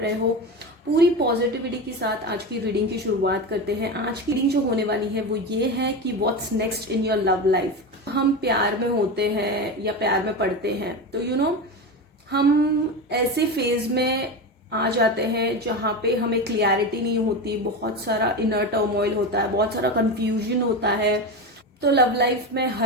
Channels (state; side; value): normal; both; correlation 0.21